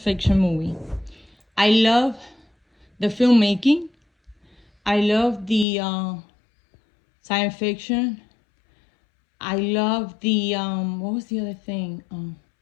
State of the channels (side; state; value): right; drops out; at 5.7 s